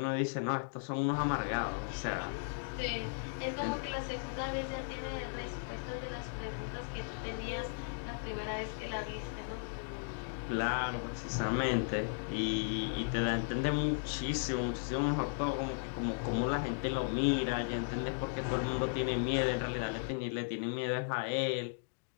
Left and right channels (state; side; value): silent; right; digital silence